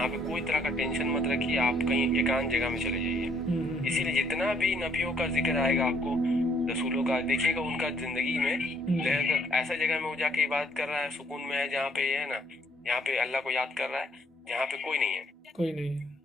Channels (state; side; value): normal; both; correlation 0.66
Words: पे कोई तरह का टेंशन मत रखिए, आप कहीं एकांत जगह में चले जाइए। इसीलिए जितना भी नबियों का जिक्र आएगा आपको, रसूलों का, देखिएगा उनका जिंदगी में ऐसा जगह में वो जाके इबादत कर रहा है, सुकून में है, जहाँ पे है ना, यहाँ पे अल्लाह को याद कर रहा है, जहाँ पे कोई नहीं है।